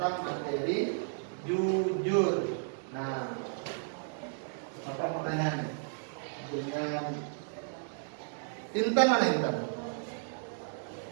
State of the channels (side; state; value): left; silent; digital silence